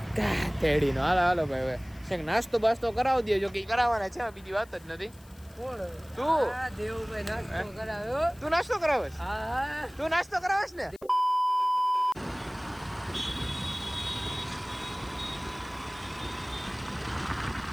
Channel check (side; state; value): left; noise; hiss, 26 dB below the sound